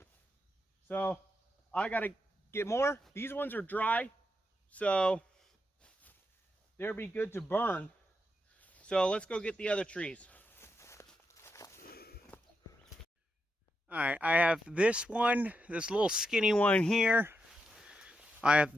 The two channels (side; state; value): both; normal; correlation 0.84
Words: So I got to get more. These ones are dry, so they'll be good to burn. So let's go get the other trees. All right, I have this one, this little skinny one here. I